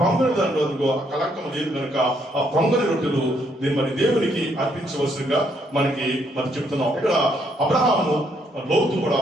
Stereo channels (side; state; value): both; normal; correlation 0.72